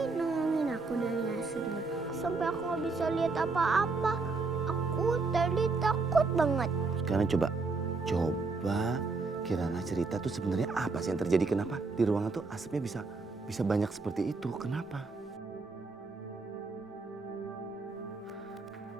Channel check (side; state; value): left; quieter; 3.9 dB